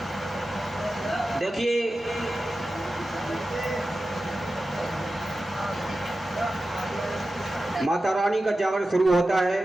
देखिए माता रानी का जागरण शुरू होता है।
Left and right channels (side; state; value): both; normal; correlation 0.93